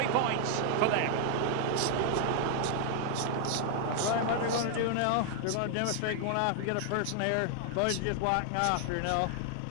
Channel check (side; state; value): both; different; correlation 0.00